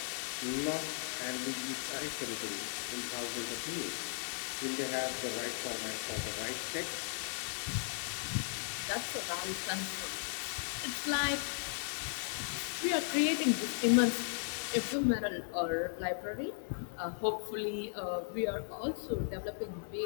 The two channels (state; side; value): silent; right; digital silence